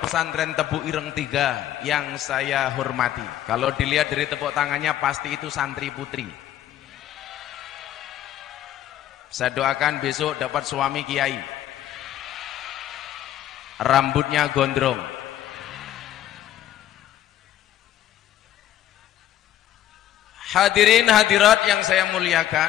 Pesantren Tebu Ireng 3 yang saya hormati. Kalau dilihat dari tepuk tangannya pasti itu santri putri. Saya doakan besok dapat suami kiai, rambutnya gondrong. Hadirin hadirat yang saya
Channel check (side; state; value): right; quieter; 12.3 dB